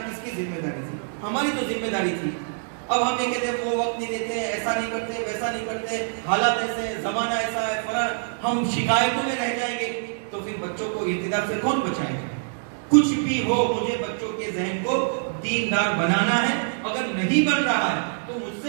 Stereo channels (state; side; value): silent; left; digital silence